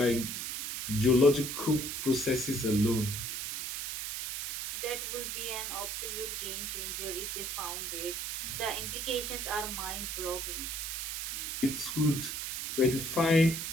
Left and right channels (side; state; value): right; noise; hiss, 4 dB below the sound